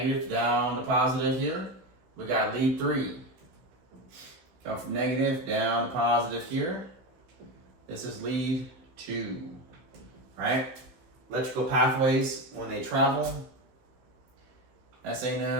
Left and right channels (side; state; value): left; late; 15 ms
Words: down to positive here. We got lead 3. Come from negative down to positive here. This is lead 2, right? Electrical pathways, when they travel, SA